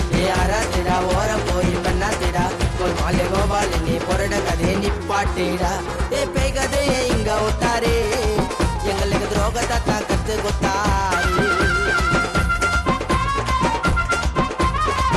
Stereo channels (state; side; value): identical; both; correlation 1.00